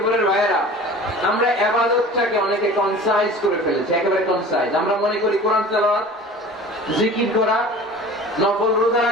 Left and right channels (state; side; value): normal; both; correlation 0.41